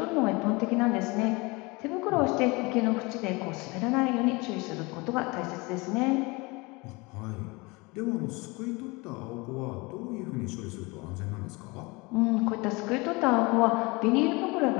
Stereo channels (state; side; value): quieter; right; 25.5 dB